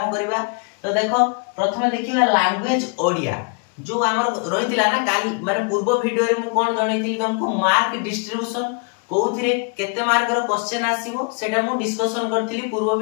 करबा। तो देखो प्रथमे देखिबा लैंग्वेज ओडिया जो हमर रहितिला ना काल माने पूर्व वीडियो रे मु कोन जणैतिली तुमको मार्क डिस्ट्रीब्यूशन कोउथिरे केते मार्क रो क्वेश्चन आसीबो सेटा मु डिस्कशन करथिली पूर्व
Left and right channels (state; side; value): quieter; right; 37.2 dB